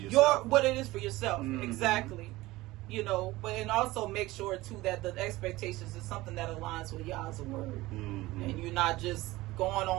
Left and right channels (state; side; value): quieter; left; 18.9 dB